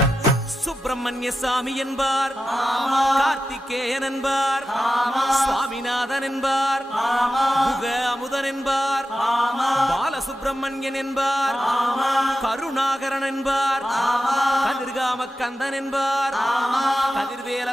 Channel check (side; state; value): both; normal; correlation 0.91